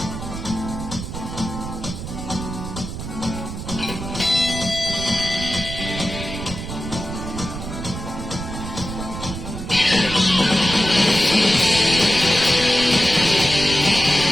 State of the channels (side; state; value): right; noise; rumble, 8 dB below the sound